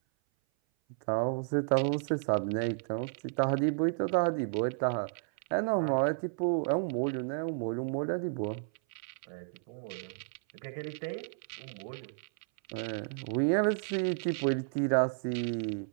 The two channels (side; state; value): left; silent; 56 dB below the other